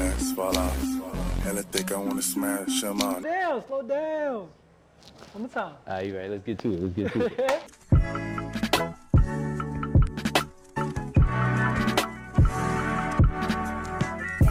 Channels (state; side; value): identical; both; correlation 1.00